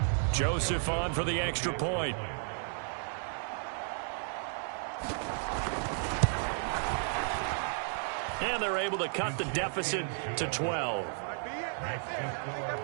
Joseph on for the extra point. And they're able to cut the deficit to 12.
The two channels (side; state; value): left; silent; 56 dB below the other